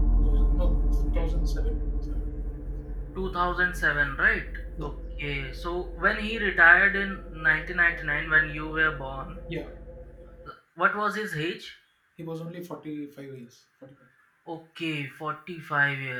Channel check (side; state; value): both; identical; correlation 1.00